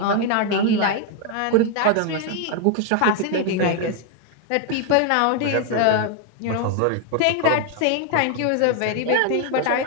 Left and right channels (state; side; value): different; both; correlation 0.01